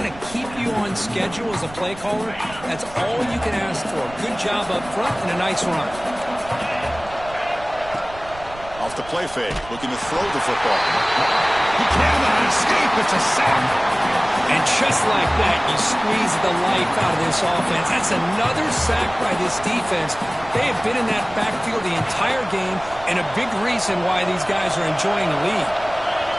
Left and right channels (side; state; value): right; noise; rumble, 18 dB below the sound